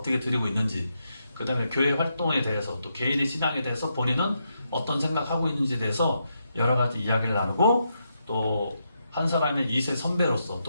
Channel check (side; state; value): both; inverted; correlation -0.82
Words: 드리고 있는지, 그 다음에 교회 활동에 대해서 또 개인의 신앙에 대해서 본인은 어떤 생각하고 있는지에 대해서 여러 가지 이야기를 나누고 또 한 사람의 2세 선배로서